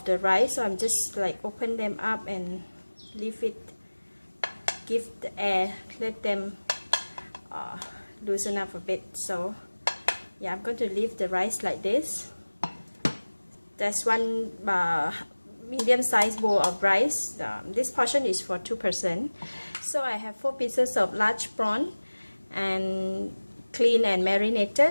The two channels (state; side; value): inverted; both; correlation -1.00